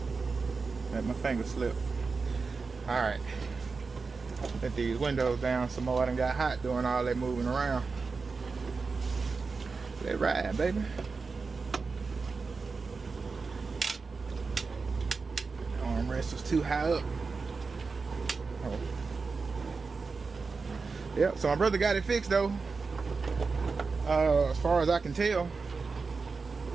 Let my finger slip. Alright. Let these windows down some more. I done got hot doing all that moving around. Let it ride, baby. Armrest was too high up. Oh. Yep, so my brother got it fixed though. As far as I can tell,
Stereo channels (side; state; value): left; quieter; 4.5 dB